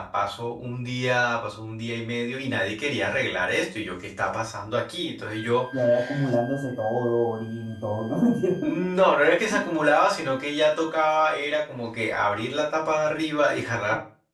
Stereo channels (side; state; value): both; identical; correlation 1.00